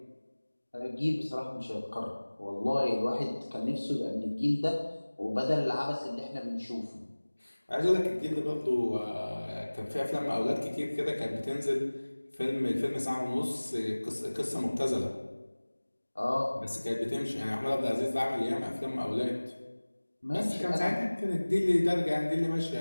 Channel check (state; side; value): inverted; both; correlation -1.00